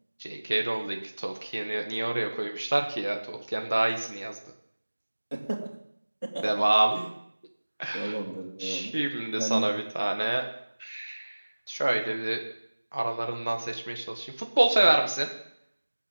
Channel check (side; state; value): both; inverted; correlation -1.00